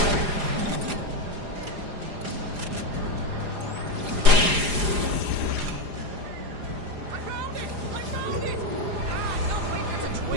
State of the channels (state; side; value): late; left; 4.9 ms